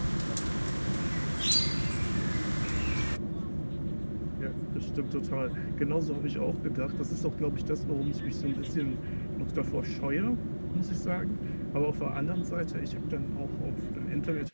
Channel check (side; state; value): both; inverted; correlation -1.00